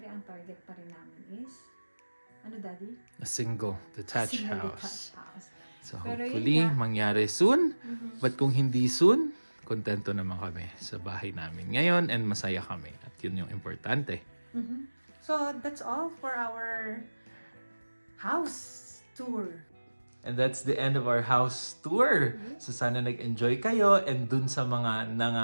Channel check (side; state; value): both; inverted; correlation -1.00